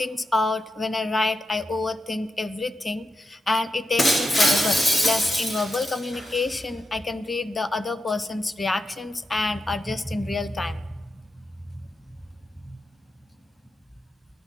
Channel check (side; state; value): both; normal; correlation 0.87